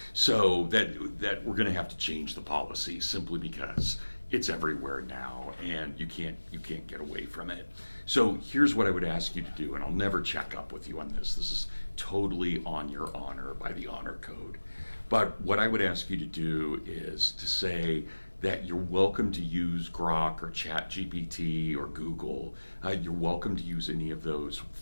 So that we're going to have to change the policy simply because it's everywhere now, and you can't get away from it. So here's what I would ask you to do, and I'll never check up with you on this. This is totally on your honor by the honor code. But what I would ask you to do is to say that you're welcome to use Grok or ChatGPT or Google. You're welcome to use any of those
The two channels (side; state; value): both; inverted; correlation -1.00